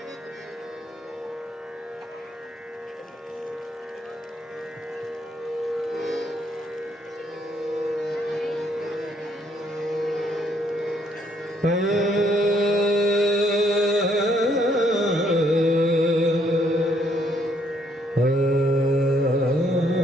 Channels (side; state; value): both; normal; correlation 0.69